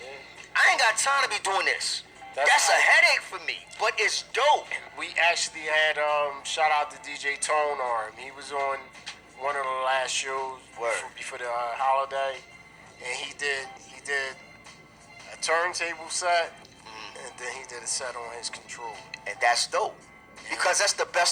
I ain't got time to be doing this. That's a headache for me, but it's dope. We actually had shout out to DJ Tone Arm. He was on one of the last shows before the holiday, and he did a turntable set, and then he did a set on his controller, and that's dope. Because that's the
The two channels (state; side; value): identical; both; correlation 1.00